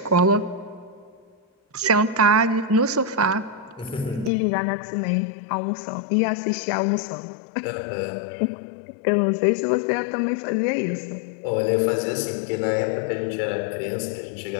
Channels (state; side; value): drops out; right; at 4.3 s